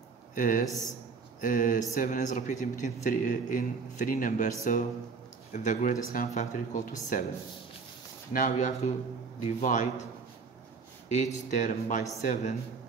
is 7 is repeated between three numbers, so the greatest common factor equal to 7. Now you have to divide each term by 7.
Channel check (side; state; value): left; quieter; 4.9 dB